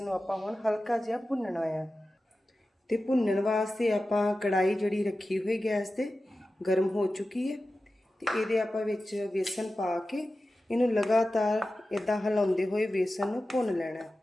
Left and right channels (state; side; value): normal; both; correlation 0.94